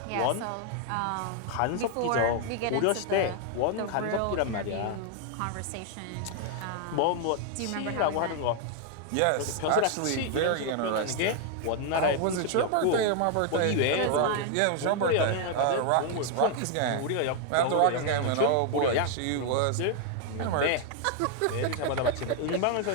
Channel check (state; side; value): different; both; correlation 0.00